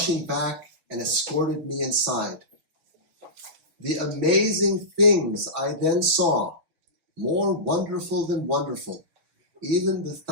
back and escorted me inside. The amazing things I then saw, more wonderful than wonderful, even the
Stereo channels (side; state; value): left; late; 5.9 ms